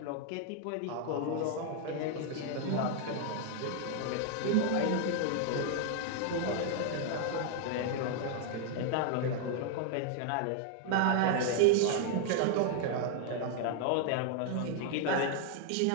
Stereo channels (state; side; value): different; both; correlation 0.00